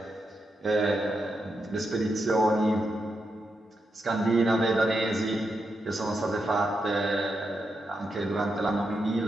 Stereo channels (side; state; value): both; normal; correlation 0.85